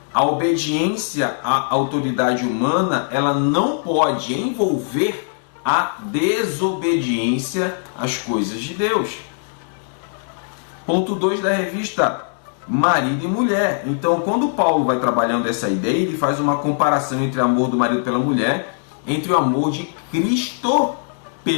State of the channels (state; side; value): silent; right; 65 dB below the other